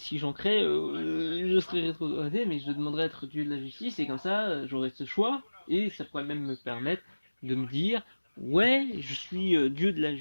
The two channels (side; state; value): both; inverted; correlation -1.00